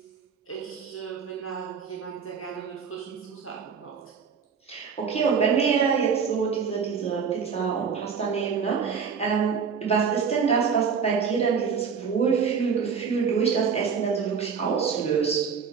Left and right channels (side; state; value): left; quieter; 6.3 dB